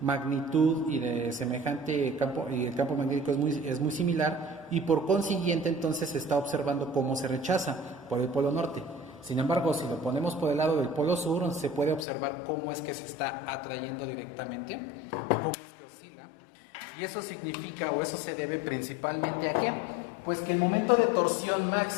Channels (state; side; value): drops out; right; at 12.1 s